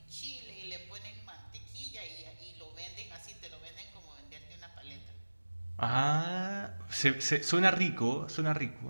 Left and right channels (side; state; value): both; inverted; correlation -1.00